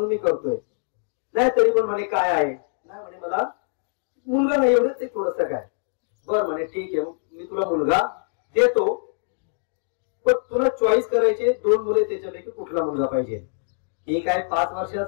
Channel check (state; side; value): silent; right; digital silence